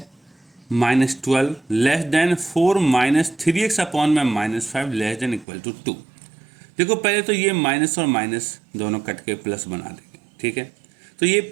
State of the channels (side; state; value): left; drops out; at 5.5 s